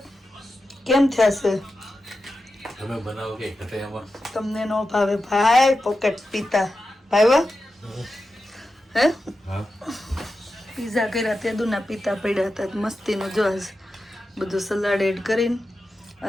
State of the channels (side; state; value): both; normal; correlation 0.91